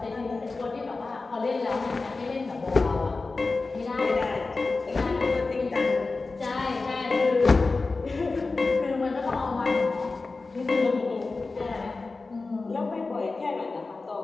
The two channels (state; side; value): quieter; right; 3.7 dB